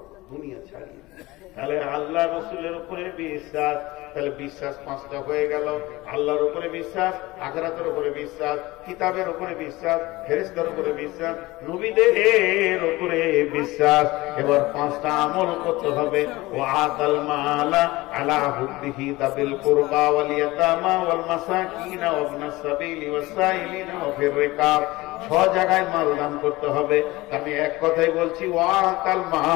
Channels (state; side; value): quieter; right; 20.2 dB